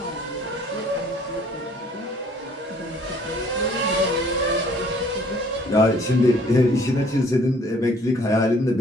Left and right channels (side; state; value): both; normal; correlation 0.57